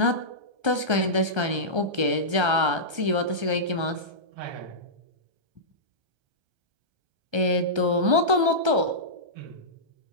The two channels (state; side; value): late; left; 1.3 ms